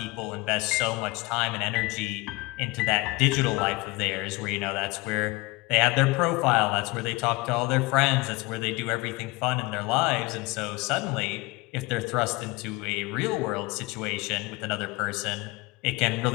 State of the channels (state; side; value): quieter; right; 23.3 dB